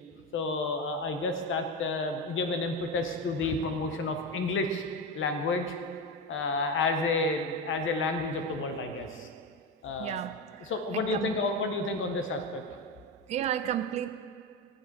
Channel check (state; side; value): normal; both; correlation 0.17